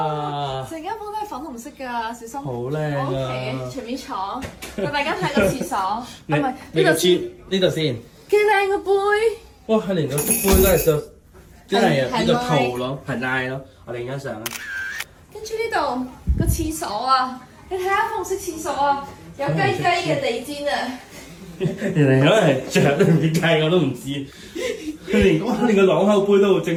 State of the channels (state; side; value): identical; both; correlation 1.00